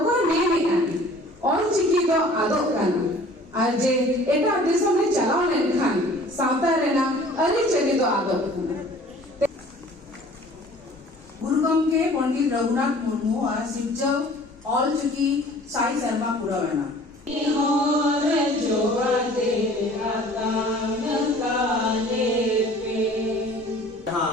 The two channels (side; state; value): both; normal; correlation 0.49